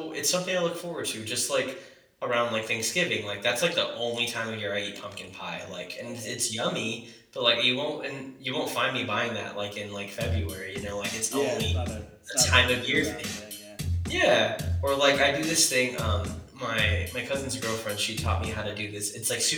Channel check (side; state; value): both; identical; correlation 1.00